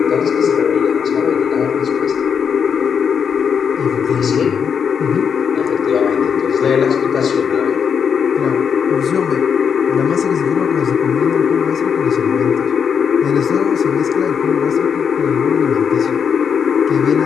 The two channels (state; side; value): quieter; right; 6.9 dB